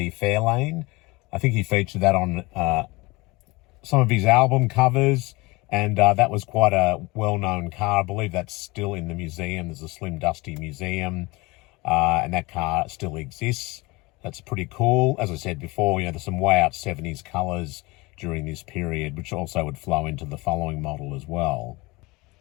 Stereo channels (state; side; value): quieter; right; 23.4 dB